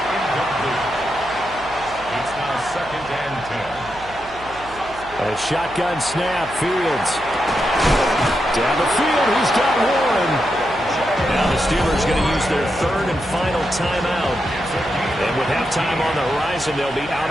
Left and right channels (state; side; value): noise; right; hum, 19 dB below the sound